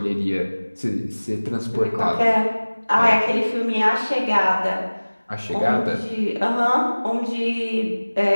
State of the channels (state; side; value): inverted; both; correlation -1.00